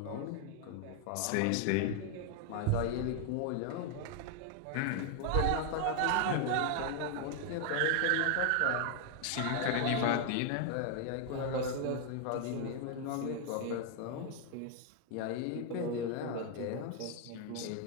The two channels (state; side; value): different; both; correlation 0.00